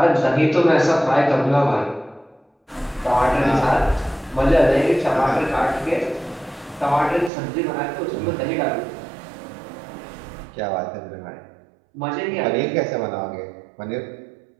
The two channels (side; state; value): left; drops out; at 7.3 s